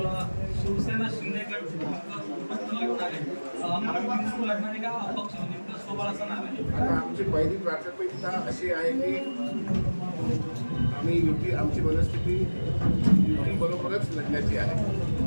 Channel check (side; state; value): both; inverted; correlation -1.00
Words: शिवसेना शिंदे गट लागणार आहे, महायुती सुरू लागणार आहे का अपक्ष म्हणजे स्वबळाचा नाव आहे? आता आमची पहिली प्राथमिकता अशी आहे की आम्ही युती, आमची मनस्थिती युती बरोबरच लढण्याची आहे.